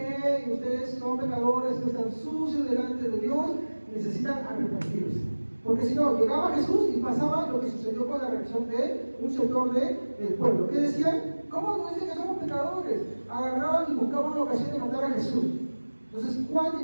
ustedes son pecadores, están sucios delante de Dios, necesitan arrepentirse. Porque si no, llegaba Jesús y pasaba lo que sucedió con la reacción de un sector del pueblo. ¿Qué decían? ¿Cómo nos dicen que somos pecadores? Agarraban y buscaban una ocasión de matar a Jesús. Entonces Juan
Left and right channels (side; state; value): both; inverted; correlation -1.00